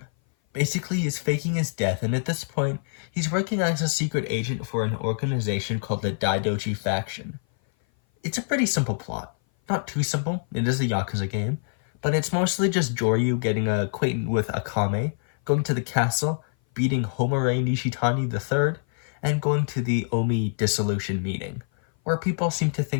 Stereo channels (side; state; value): right; silent; 57 dB below the other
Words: Basically, he's faking his death, and at this point, he's working as a secret agent for an organization called the Daidoji Faction. It's a pretty simple plot. Not too simple, it is a Yakuza game, but it's mostly just Joryu getting acquainted with Akame, going to the castle, beating Homare Nishitani III, and going to the Omi dissolution meeting, where people seem to